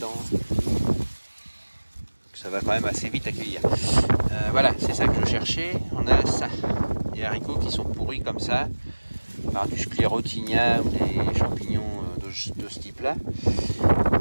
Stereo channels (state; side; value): inverted; both; correlation -1.00